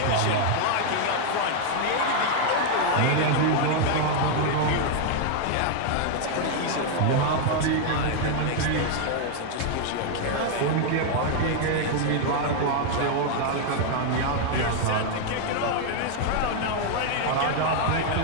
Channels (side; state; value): both; different; correlation 0.00